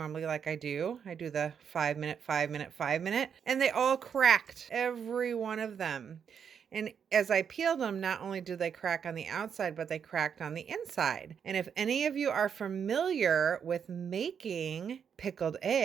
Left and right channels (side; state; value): left; quieter; 7.4 dB